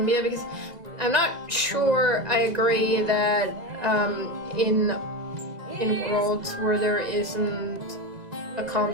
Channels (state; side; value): late; left; 1.9 ms